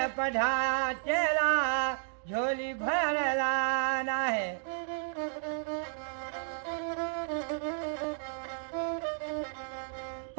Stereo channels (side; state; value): left; silent; digital silence